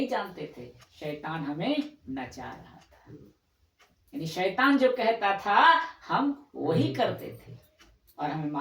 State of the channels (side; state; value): both; identical; correlation 1.00